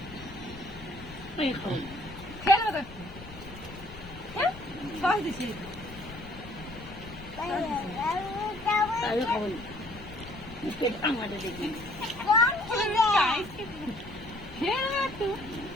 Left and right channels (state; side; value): noise; left; rumble, 16 dB below the sound